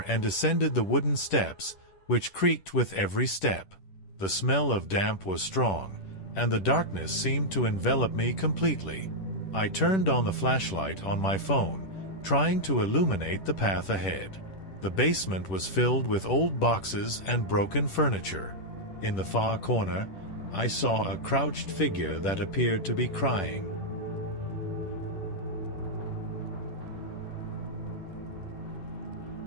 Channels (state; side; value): late; right; 10 ms